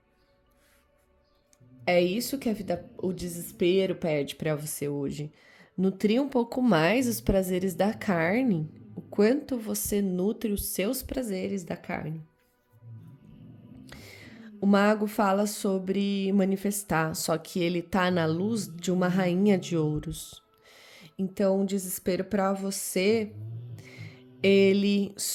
É isso que a vida, o desespero pede para você hoje. Nutrir um pouco mais os prazeres da carne. O quanto você nutre os seus prazeres da carne. O mago fala sobre manifestar, só que ele tá na luz de uma rainha de ouros. Então, o desespero para você, ele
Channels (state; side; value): identical; both; correlation 1.00